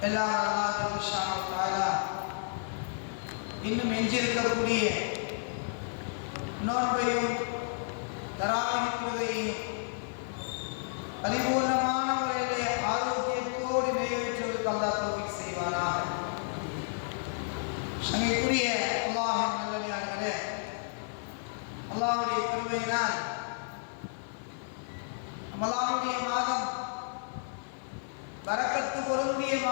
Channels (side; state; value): right; silent; 57 dB below the other